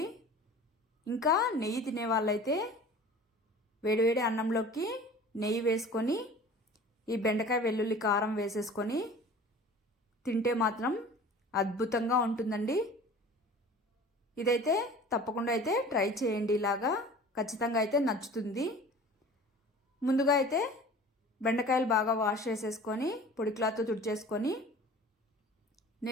ఇంకా నెయ్యి తినే వాళ్ళైతే వేడివేడి అన్నంలోకి నెయ్యి వేసుకొని ఈ బెండకాయ వెల్లుల్లి కారం వేసేసుకొని తింటే మాత్రం అద్భుతంగా ఉంటుందండి. ఇదైతే తప్పకుండా అయితే ట్రై చేయండి. ఇలాగా ఖచ్చితంగా అయితే నచ్చుతుంది. ముందుగా అయితే బెండకాయలు బాగా వాష్ చేసేసుకొని పొడి క్లాత్తో తుడిచేసుకొని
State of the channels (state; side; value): normal; both; correlation 0.43